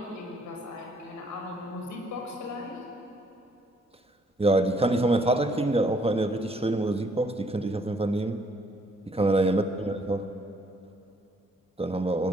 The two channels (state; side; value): normal; both; correlation 0.66